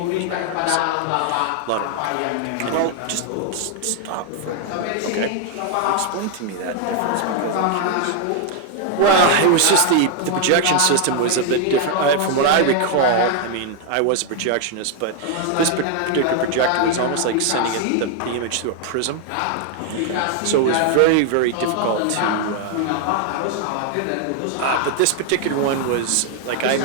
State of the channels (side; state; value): both; different; correlation 0.00